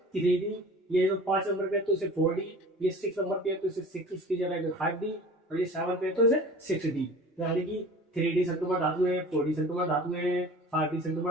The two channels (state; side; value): normal; both; correlation 0.42